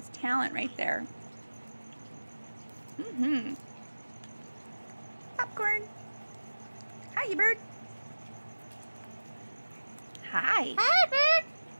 talent right there. Popcorn. Hi, you bird. Hi. Hi, bird.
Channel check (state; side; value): inverted; both; correlation -1.00